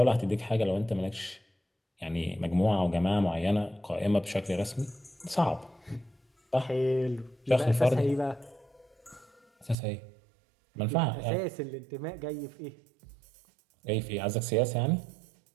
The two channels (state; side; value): drops out; left; at 9.8 s